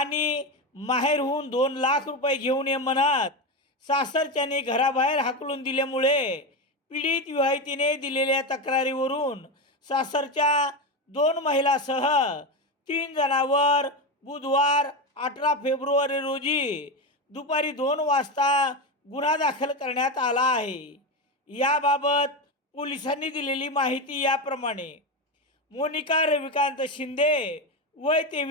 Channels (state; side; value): normal; both; correlation 0.15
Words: माहेरहून 2 लाख रुपये घेऊन ये म्हणत सासरच्याने घराबाहेर हाकलून दिल्यामुळे पीडित विवाहितेने दिलेल्या तक्रारीवरून सासरच्या 2 महिलासह 3 जणांवर बुधवार 18 फेब्रुवारी रोजी दुपारी 2 वाजता गुन्हा दाखल करण्यात आला आहे. याबाबत पोलिसांनी दिलेली माहिती याप्रमाणे: मोनिका रविकांत शिंदे, वय